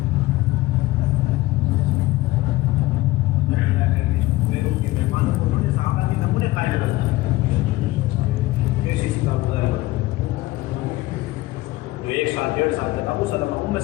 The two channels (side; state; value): right; quieter; 18.6 dB